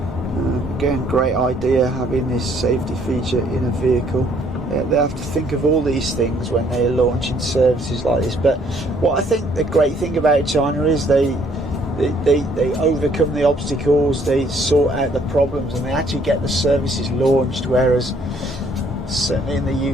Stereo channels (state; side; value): normal; both; correlation 0.64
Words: Again, great idea having this safety feature in a vehicle. They have to think of all these things when they're launching services like this. But what I think the great thing about China is they overcome the obstacles, they sort out the problems, and they actually get the services launched, whereas certainly in the